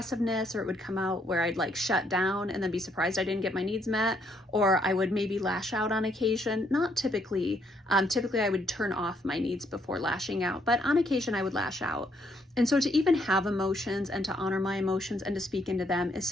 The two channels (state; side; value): normal; both; correlation 0.71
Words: or it would come out where I'd like shut down and then be surprised I didn't get my needs met, or I would maybe lash out on occasion. Not typically. Typically I would turn off my needs before lashing out, but on occasion I would lash out. And so to even have emotions and to honor my emotions and to speak into them is